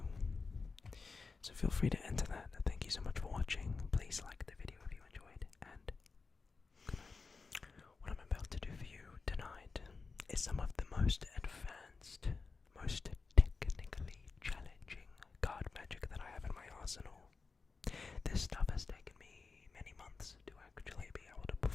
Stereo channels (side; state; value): right; quieter; 4.5 dB